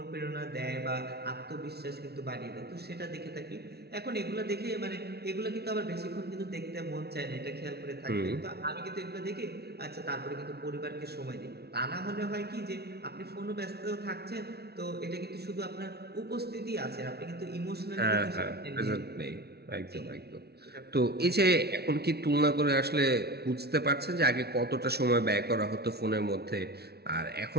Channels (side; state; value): left; late; 0.47 ms